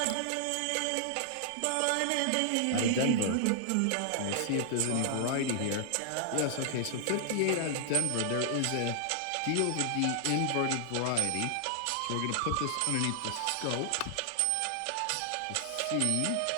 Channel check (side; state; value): both; different; correlation 0.00